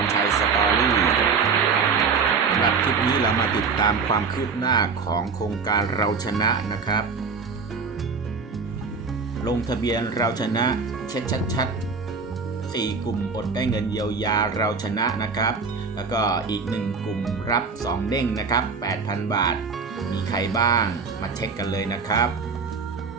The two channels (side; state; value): left; quieter; 5.1 dB